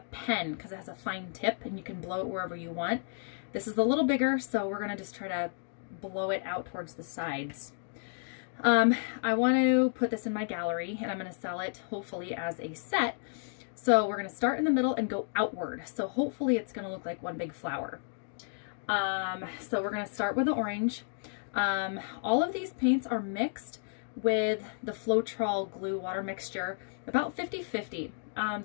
pen because it has a fine tip and you can blow it wherever you want. This is a little bigger, so we're going to just try to blow it out towards the sides. I want to put this in my gallery and I'm going to sell it hopefully as a set. So we're going to start in the middle and go outward. So hopefully it's going to look like one big flower. So we're going to start with the orange. All of these paints are mixed with the Floetrol glue water mixture, about 50-50.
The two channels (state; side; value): silent; right; digital silence